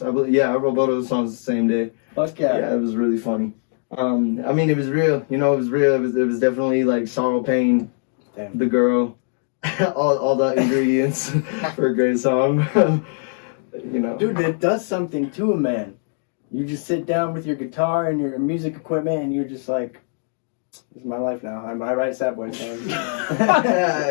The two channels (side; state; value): right; silent; 65 dB below the other